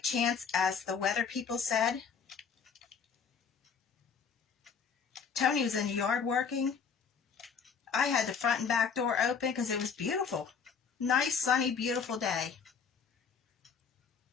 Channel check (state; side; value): quieter; right; 6.2 dB